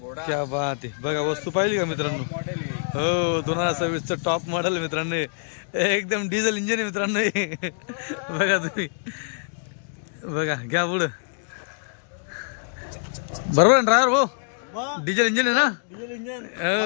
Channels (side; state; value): right; silent; digital silence